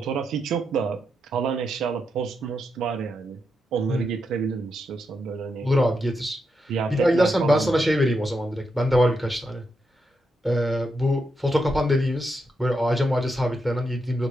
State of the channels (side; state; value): both; normal; correlation 0.84